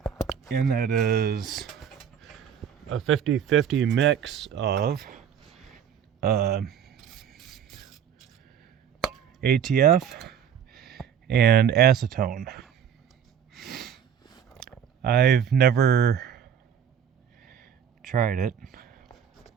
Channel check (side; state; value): left; quieter; 8.4 dB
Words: and that is a 50-50 mix of ATF and acetone. I've never tried it